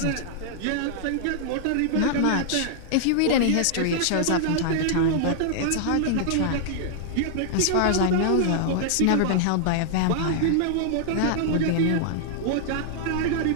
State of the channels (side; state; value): both; different; correlation -0.01